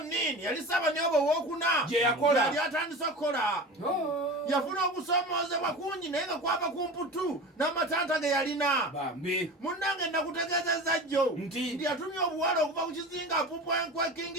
yali Ssaabanyooba owokuna yali atandise okukola yafuna okusomoozebwa kungi naye nga kwava ku mputu n'amatanta ge yalina munnange nakutegeezezza jjo nti yatumye obuwala okuva ku kizinga apupwenkwe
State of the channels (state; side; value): normal; both; correlation 0.32